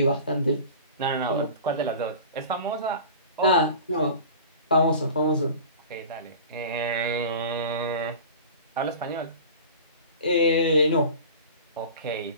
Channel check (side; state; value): both; inverted; correlation -0.38